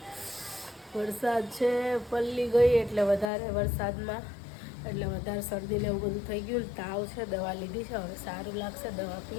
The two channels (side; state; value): right; drops out; at 3.3 s